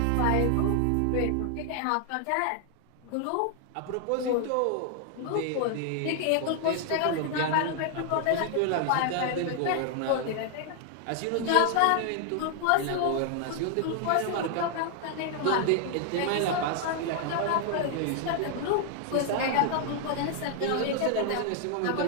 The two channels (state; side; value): different; both; correlation 0.00